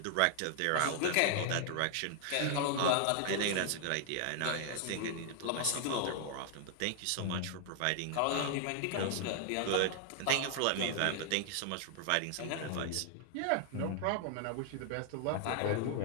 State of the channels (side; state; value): both; different; correlation 0.00